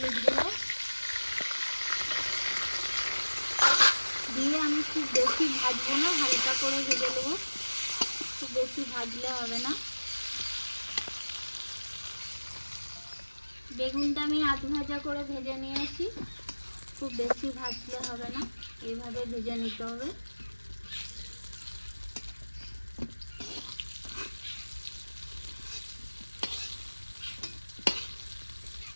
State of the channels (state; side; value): inverted; both; correlation -1.00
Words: গুঁড়ো দিয়ে আমি খুব বেশি ভাজবো না, হালকা করে ভেজে নেবো। খুব বেশি ভাজলে হবে না। বেগুনটা আমি আধ ভাজা করে ভেজে নিয়েছি। খুব বেশি ভাজলে হবে না, এইভাবে ভেজে নিতে হবে।